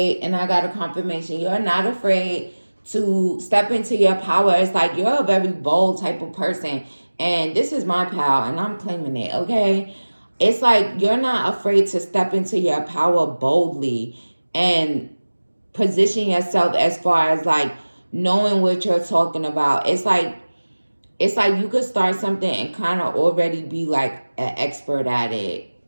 and I got a confirmation. You're not afraid to step into your power. It's like you're a very bold type of person. And this is my power, and I'm claiming it, okay? It's like you're not afraid to step into your power boldly and position yourself as far as like knowing what you're talking about. It's like you could start something and kind of already be like an expert at it.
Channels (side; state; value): both; inverted; correlation -1.00